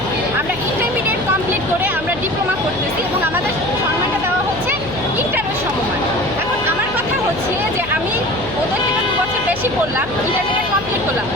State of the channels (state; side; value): noise; left; hum, 14 dB below the sound